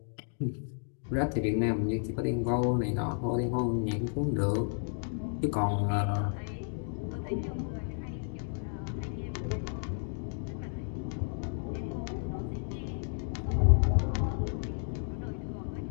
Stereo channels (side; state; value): right; silent; 56 dB below the other